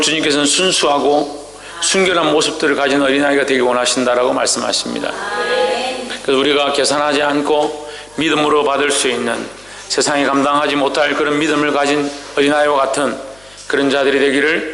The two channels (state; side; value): noise; left; hum, 28 dB below the sound